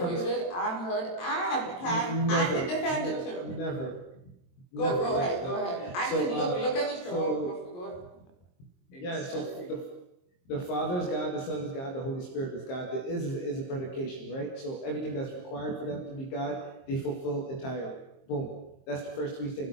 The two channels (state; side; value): late; right; 23 ms